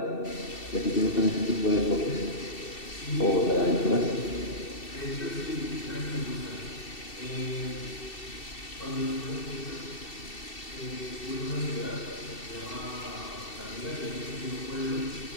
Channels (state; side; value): late; right; 2.7 ms